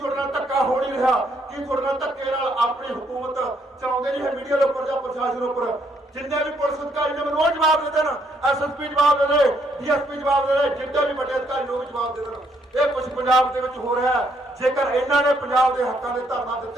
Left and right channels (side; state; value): both; normal; correlation 0.72